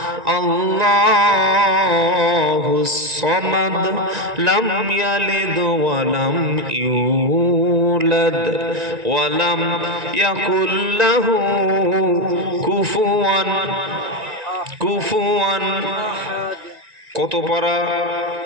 আল্লাহুস সামাদ লাম ইয়ালিদ ওয়া লাম ইউলাদ ওয়া লাম ইয়াকুল লাহু কুফুয়ান। কত পারা?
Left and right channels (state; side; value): late; left; 1.9 ms